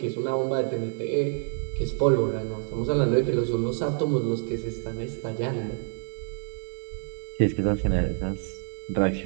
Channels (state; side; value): silent; left; digital silence